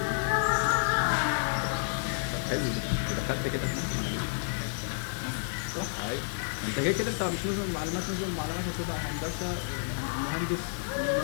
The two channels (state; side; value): silent; right; 58 dB below the other